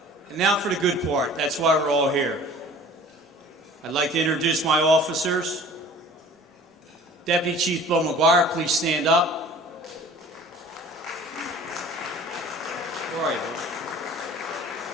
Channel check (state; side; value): normal; both; correlation 0.46